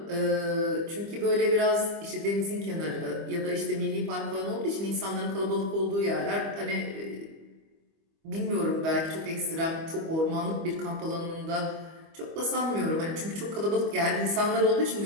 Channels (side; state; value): left; late; 25 ms